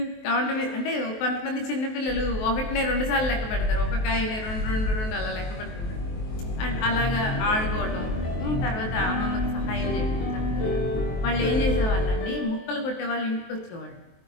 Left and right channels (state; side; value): late; right; 23 ms